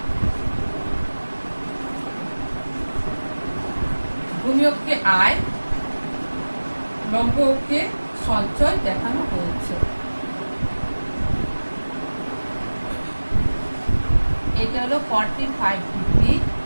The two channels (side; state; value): both; inverted; correlation -1.00